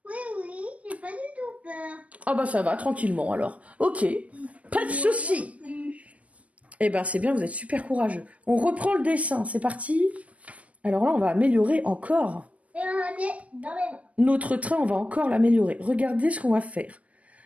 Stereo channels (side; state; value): left; late; 0.065 ms